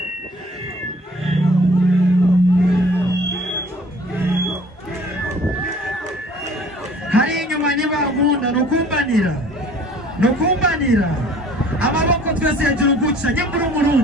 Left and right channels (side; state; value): both; normal; correlation 0.52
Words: hari inyuma nibagunda nukumbanira amaboko twese hejuru guca nyambura